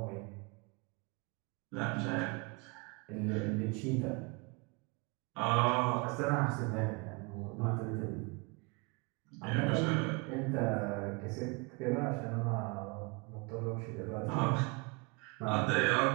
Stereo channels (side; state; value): left; quieter; 29.3 dB